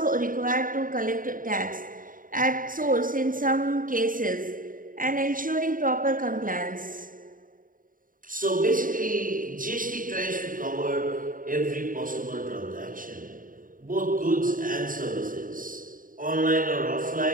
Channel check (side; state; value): left; late; 0.40 ms